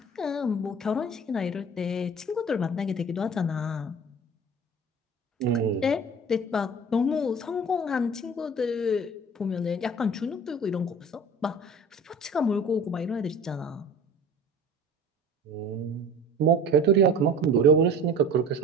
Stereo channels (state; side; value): normal; both; correlation 0.41